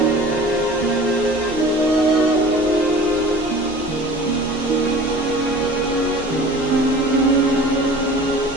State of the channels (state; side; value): noise; right; hum, 21 dB below the sound